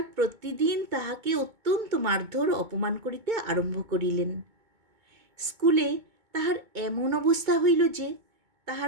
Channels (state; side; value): late; left; 2.2 ms